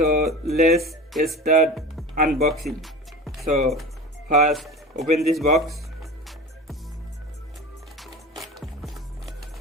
let's start unboxing. So first open this box.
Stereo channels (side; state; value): both; normal; correlation 0.33